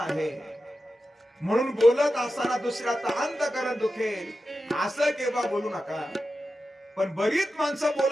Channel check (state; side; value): normal; both; correlation 0.91